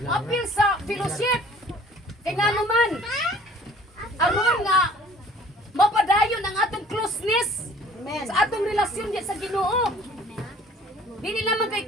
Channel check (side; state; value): both; normal; correlation 0.52